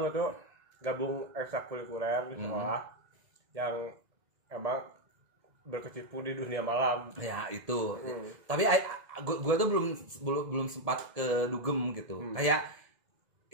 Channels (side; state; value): left; late; 2.0 ms